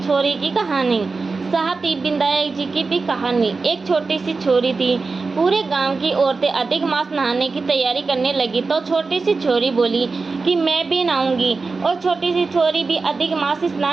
छोरी की कहानी। साथ ही विनायक जी की भी कहानी। एक छोटी सी छोरी थी। पूरे गांव की औरतें अधिक मास नहाने की तैयारी करने लगी तो छोटी सी छोरी बोली कि मैं भी नहाऊंगी। और छोटी सी छोरी भी अधिक मास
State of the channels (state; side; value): quieter; left; 4.1 dB